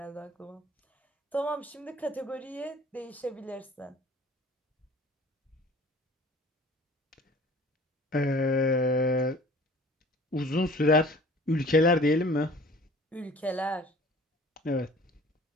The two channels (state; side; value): normal; both; correlation 0.48